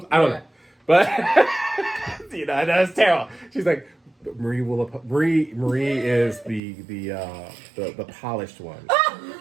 I don't know. But that's terrible. She's like, Marie is the polished one.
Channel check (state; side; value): drops out; left; at 6.6 s